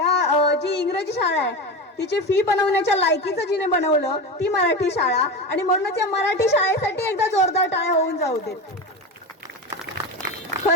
जी इंग्रजी शाळा आहे तिची फी बनवण्याच्या लायकीचं जिने बनवलं ती मराठी शाळा. आणि म्हणूनच या मराठी शाळेसाठी एकदा जोरदार टाळ्या होऊन जाऊ देत.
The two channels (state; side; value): normal; both; correlation 0.23